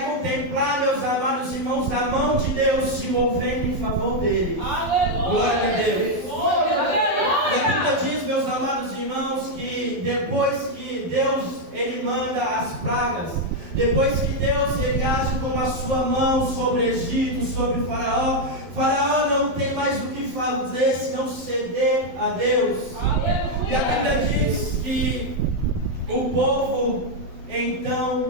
contemplar, meus amados irmãos, a mão de Deus se movendo em favor dele. Glória a Deus. E a Bíblia diz, meus amados irmãos, que depois que Deus ele manda as pragas, depois que Deus ele age com a sua mão sobre o Egito, sobre o Faraó, Faraó não tem mais o que fazer senão ceder a Deus. E a Bíblia diz que o povo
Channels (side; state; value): left; late; 12 ms